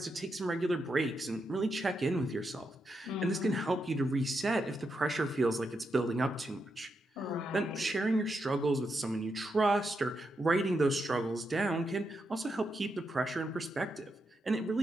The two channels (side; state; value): both; normal; correlation 0.83